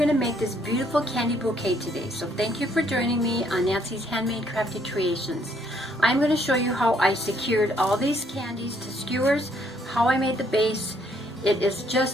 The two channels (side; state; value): both; normal; correlation 0.68